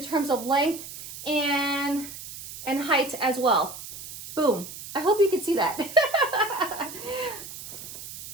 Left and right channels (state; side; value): noise; right; hiss, 12 dB below the sound